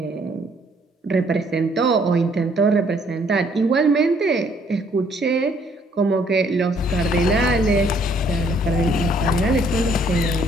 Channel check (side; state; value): both; normal; correlation 0.64